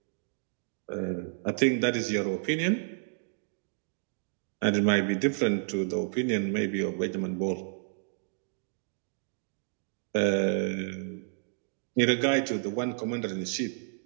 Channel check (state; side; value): silent; left; digital silence